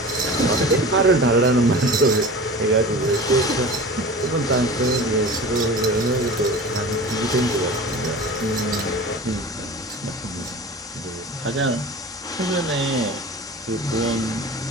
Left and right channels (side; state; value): both; normal; correlation 0.35